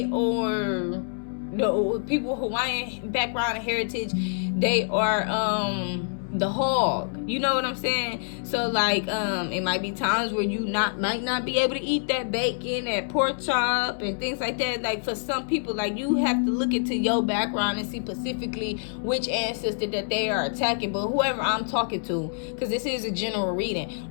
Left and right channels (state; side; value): silent; right; 61 dB below the other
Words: are, the people Hawaiian background and heritage, they are, the hog, you know what I'm saying? So like it might be times where you might not be able to eat that bacon, that pork chop and things like that. Like for some people, like you have to look into your background and see specifically which ancestor that they are attacking. But whoever I'm talking to, because this is a general reading,